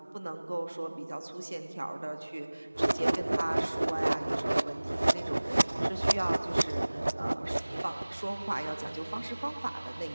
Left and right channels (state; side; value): inverted; both; correlation -1.00